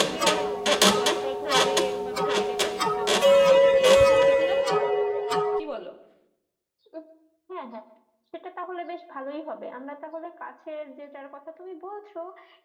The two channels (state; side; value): identical; both; correlation 1.00